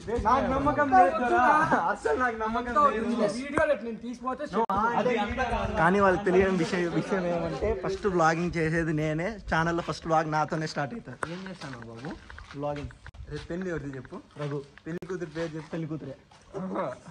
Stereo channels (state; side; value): identical; both; correlation 1.00